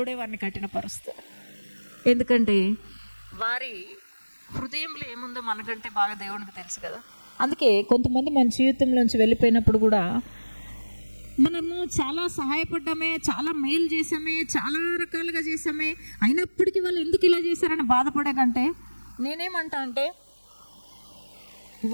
వారిని కఠినపరుస్తాడు. ఎందుకంటే వారి హృదయంలో ఏముందో మనకంటే బాగా దేవునికి తెలుసు కదా. అందుకే కొంతమంది మన జీవితంలోంచి వెళ్ళిపోయినప్పుడు కూడా మనము చాలా సహాయపడ్డామే, చాలా మేలు చేసామే, చాలా రకాలుగా చేసామే, అయినప్పటికీ వాళ్ళు ఎందుకు ఇలా చేశారని బాధపడే కంటే నేనేమంటా అంటే,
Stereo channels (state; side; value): inverted; both; correlation -1.00